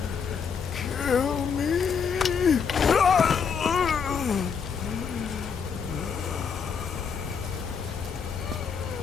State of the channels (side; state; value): right; quieter; 6.4 dB